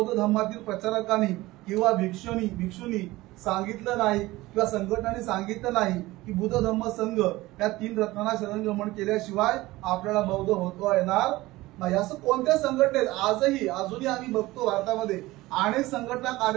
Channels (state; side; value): quieter; left; 18.9 dB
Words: धर्मातील प्रचारकांनी किंवा भिक्षुनी सांगितलं नाही किंवा संघटनांनी सांगितलं नाही की बुद्ध धम्म संघ या 3 रत्नांना शरणगमन केल्याशिवाय आपल्याला बौद्ध होता येणार नाही. असं कोणत्या संघटनेत अजूनही आम्ही बघतो भारतामध्ये अनेक संघटना